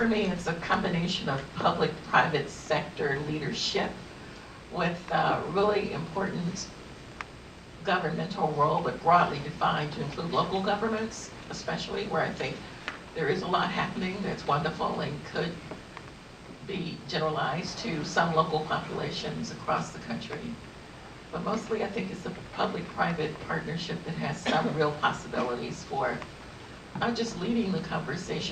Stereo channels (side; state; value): both; identical; correlation 1.00